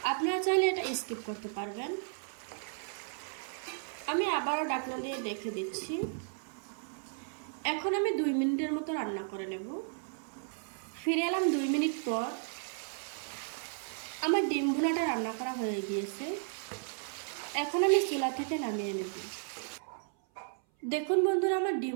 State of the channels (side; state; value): left; silent; 55 dB below the other